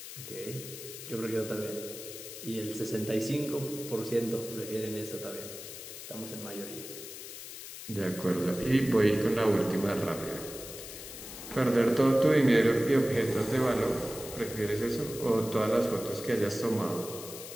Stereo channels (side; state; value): left; noise; hiss, 11 dB below the sound